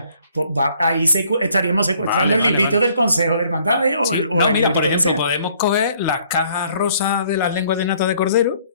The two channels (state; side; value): inverted; both; correlation -0.62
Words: ahí estaríamos secuestrando el librito del Consejo de Hermandades o el mira, librito por que ejemplo, sea. podemos coger las cajas rosas de las lenguas de nata de cordero